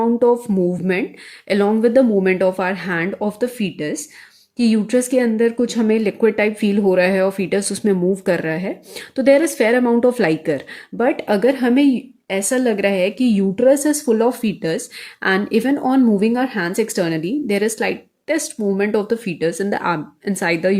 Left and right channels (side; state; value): both; identical; correlation 1.00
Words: of movement along with the movement of our hand of the foetus, कि यूट्रस के अंदर कुछ हमें लिक्विड टाइप फील हो रहा है और फीटस उसमें मूव कर रहा है, तो there is fair amount of liquor. But अगर हमें ऐसा लग रहा है कि uterus is full of foetus and even on moving our hands externally there is slightest movement of the foetus inside the